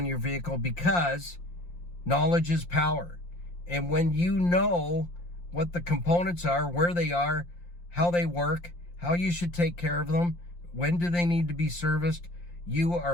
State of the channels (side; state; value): right; late; 5.7 ms